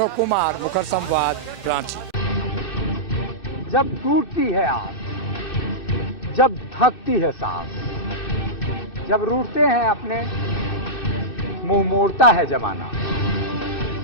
कुमार, मुखर संवाद, रांची। जब टूटती है आस, जब थकती है सांस, जब रूठते हैं अपने, मुंह मोड़ता है जमाना,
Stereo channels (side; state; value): right; late; 2.6 ms